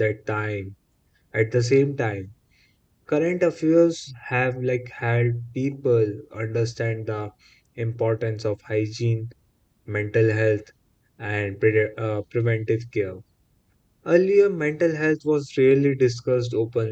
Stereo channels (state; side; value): identical; both; correlation 1.00